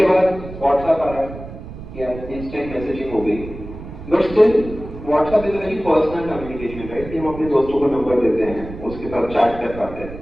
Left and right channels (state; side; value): noise; right; rumble, 12 dB below the sound